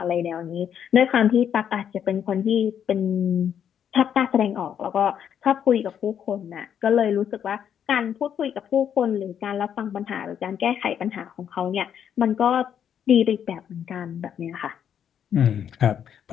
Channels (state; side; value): quieter; right; 8.8 dB